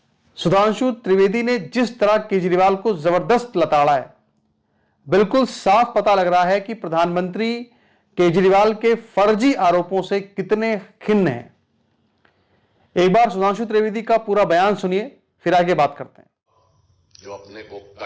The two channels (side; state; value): both; identical; correlation 1.00